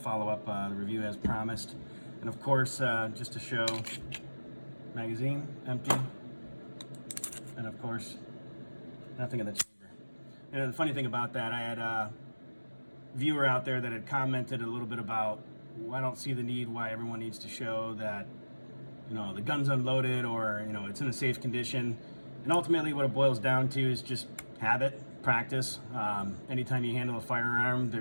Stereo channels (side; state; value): both; inverted; correlation -1.00